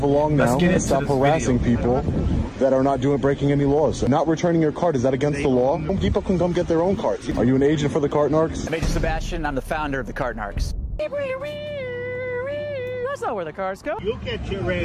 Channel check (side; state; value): both; identical; correlation 1.00